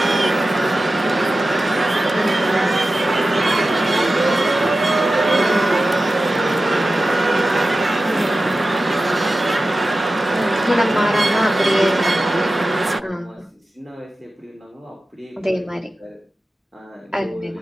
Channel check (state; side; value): normal; both; correlation 0.94